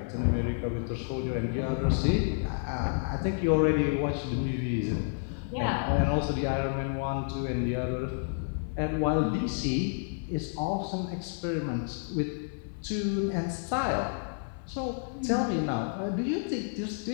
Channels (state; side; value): silent; right; digital silence